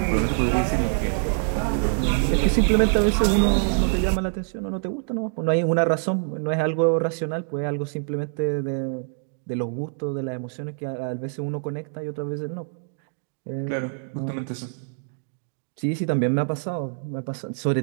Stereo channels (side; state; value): left; silent; 62 dB below the other